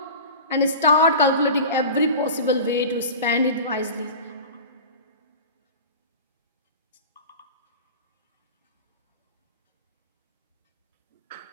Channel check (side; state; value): both; inverted; correlation -0.33